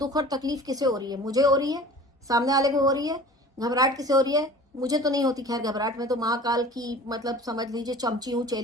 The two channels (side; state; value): both; normal; correlation 0.42